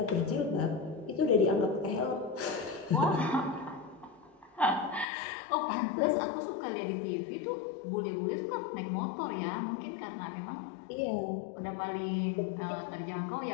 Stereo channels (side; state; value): right; drops out; at 5.1 s